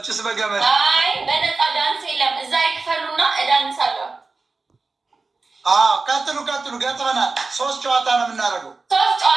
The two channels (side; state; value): left; quieter; 3.9 dB